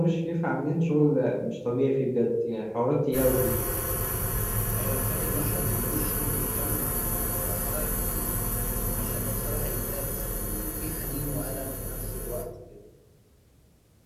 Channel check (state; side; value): identical; both; correlation 1.00